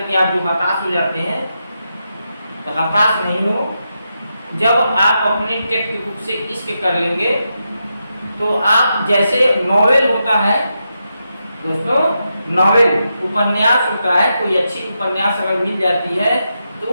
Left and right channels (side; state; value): both; inverted; correlation -0.86